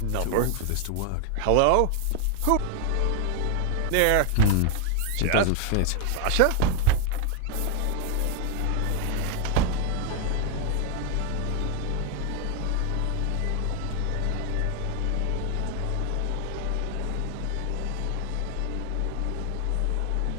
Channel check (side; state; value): both; different; correlation 0.01